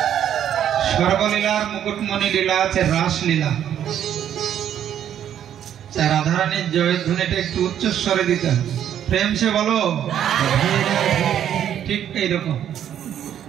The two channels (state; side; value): quieter; left; 10.1 dB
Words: সর্বলীলার মুকুটমণি লীলা আছে রাসলীলা। রাধারানীর জয়ধ্বনিটা একটু উচ্চস্বরে দিতে হবে, প্রেম সে বলো, ঠিক এইরকম।